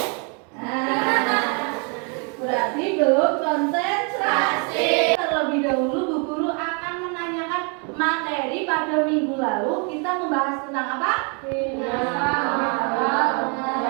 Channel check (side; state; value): left; quieter; 36.1 dB